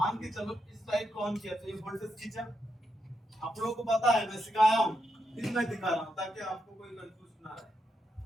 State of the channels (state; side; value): normal; both; correlation 0.82